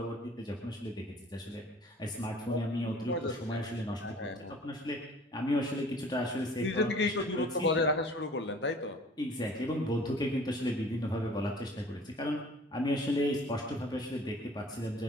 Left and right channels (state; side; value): normal; both; correlation 0.49